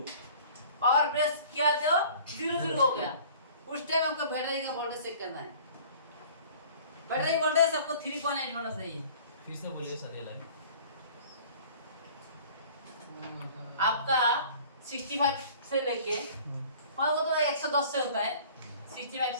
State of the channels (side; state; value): both; inverted; correlation -0.48